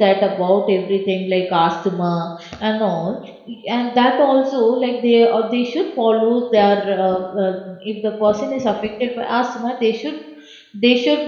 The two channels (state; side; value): identical; both; correlation 1.00